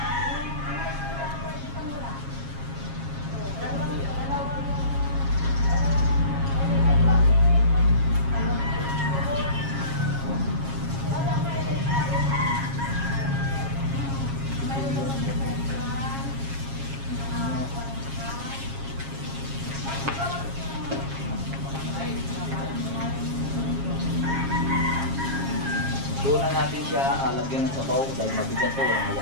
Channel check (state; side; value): late; left; 7.4 ms